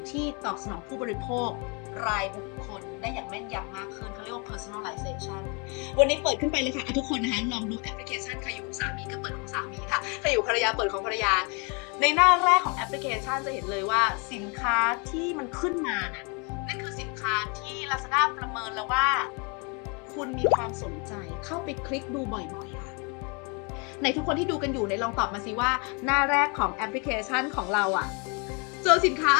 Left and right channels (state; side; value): quieter; right; 33.0 dB